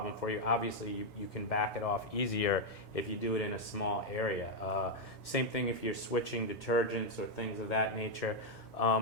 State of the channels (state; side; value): normal; both; correlation 0.00